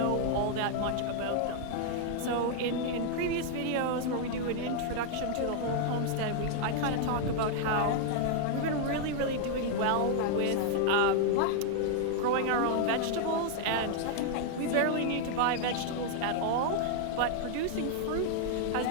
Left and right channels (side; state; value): both; different; correlation 0.00